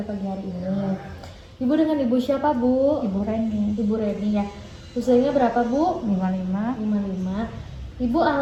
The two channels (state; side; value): identical; both; correlation 1.00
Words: pagi hari ini. Ibu dengan Ibu siapa Bu? Ibu Reni. Ibu Reni ya. Usianya berapa Bu? 55. 55. Ibu